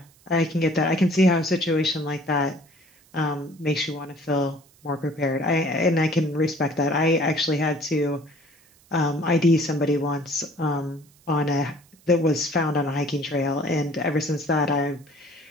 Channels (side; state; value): right; noise; hiss, 30 dB below the sound